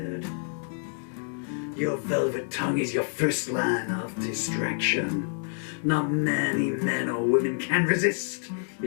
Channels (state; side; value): silent; right; 60 dB below the other